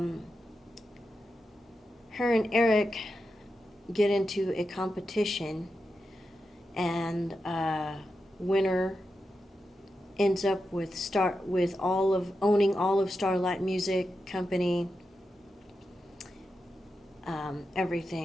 and Eric get into a competition, and winner ends up with owning all of Starlight Music Company,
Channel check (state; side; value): normal; both; correlation 0.89